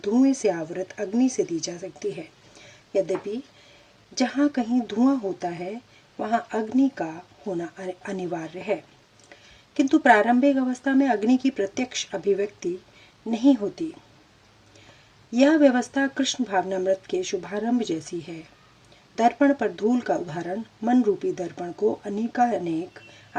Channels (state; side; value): identical; both; correlation 1.00